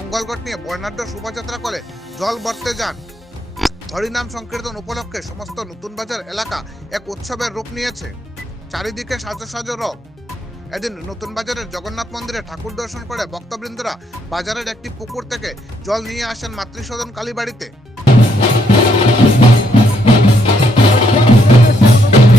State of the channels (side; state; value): both; normal; correlation 0.73